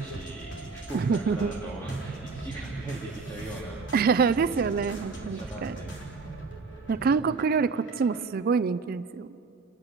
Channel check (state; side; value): quieter; left; 4.7 dB